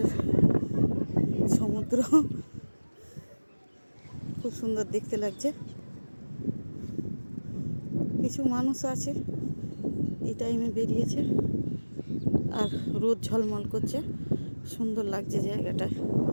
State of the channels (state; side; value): inverted; both; correlation -1.00